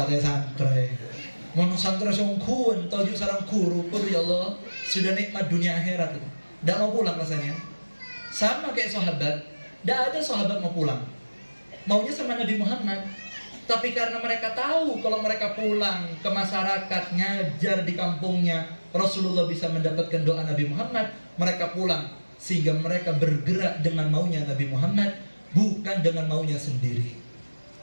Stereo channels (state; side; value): inverted; both; correlation -1.00